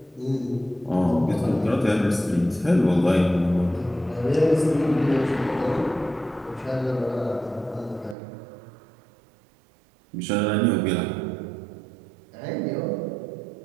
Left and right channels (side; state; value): left; drops out; at 8.2 s